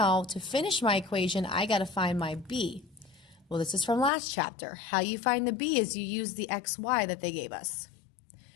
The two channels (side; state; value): right; drops out; at 4.1 s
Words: to finish my equation, I got to find my b. Well, this is from last chapter. How you find the b is you use the xy that they gave us.